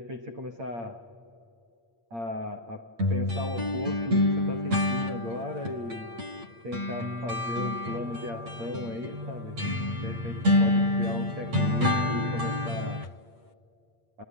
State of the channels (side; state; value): left; late; 8.7 ms